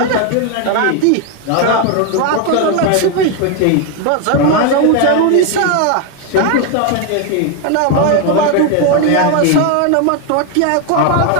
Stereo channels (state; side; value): different; both; correlation 0.01